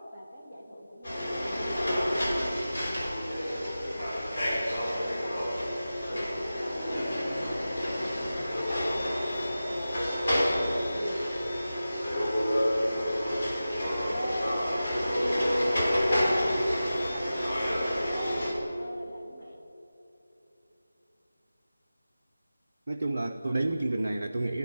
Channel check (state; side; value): inverted; both; correlation -0.94